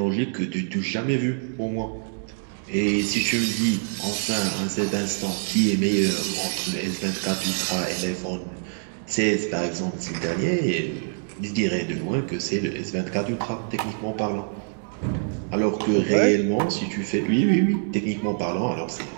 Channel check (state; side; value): silent; left; 62 dB below the other